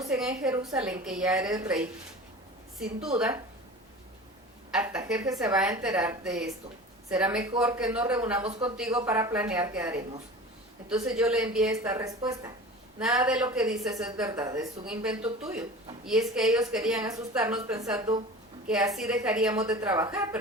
en Jerusalén que ya eres rey. Sin duda, Artajerjes se va a enterar de esto. Será mejor que nos reunamos contigo para planear qué haremos. Entonces yo le envié esta respuesta. Nada de lo que dices es verdad, es un invento tuyo. Y es que ellos querían asustarnos pensando que así dejaríamos de trabajar,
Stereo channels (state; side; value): normal; both; correlation 0.37